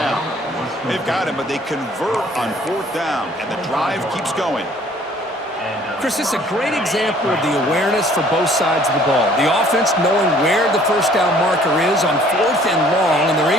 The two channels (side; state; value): both; normal; correlation 0.57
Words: They've got him, but they convert on fourth down, and the drive keeps going. Chris, it's a great example of the awareness for both sides of the ball. The offense knowing where the first down marker is on fourth and long, and they're